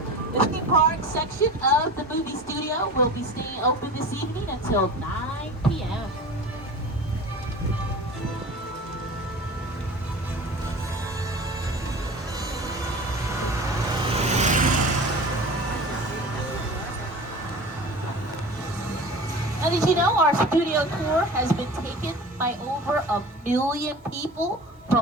The theme park section of the movie studio will be staying open this evening until 9 p.m. Now, did you know our studio tour has been taken by over 1 million people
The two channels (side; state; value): both; normal; correlation 0.36